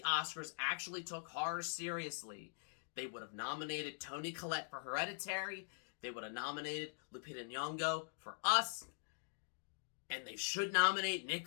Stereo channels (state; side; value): silent; right; digital silence